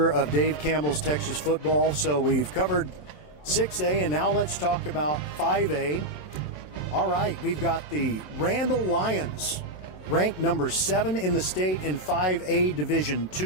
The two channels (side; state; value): right; late; 27 ms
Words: of Dave Campbell's Texas Football. So we've covered 6A, and now let's talk about 5A. All right, we've got the Randall Lions, ranked number 7 in the state in 5A Division